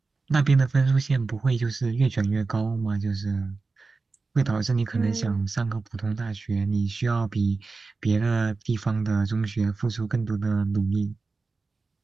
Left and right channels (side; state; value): left; quieter; 4.0 dB